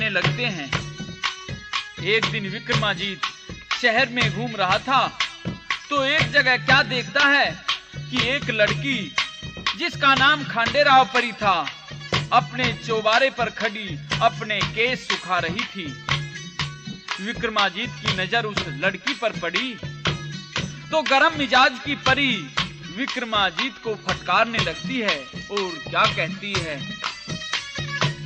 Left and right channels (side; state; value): both; identical; correlation 1.00